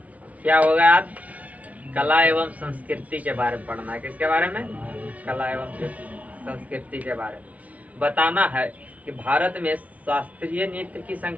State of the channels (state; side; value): late; left; 0.069 ms